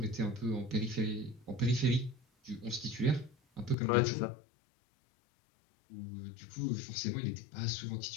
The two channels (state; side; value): drops out; right; at 3.8 s